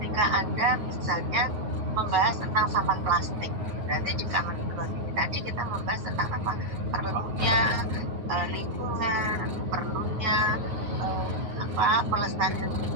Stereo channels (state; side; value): late; left; 9.2 ms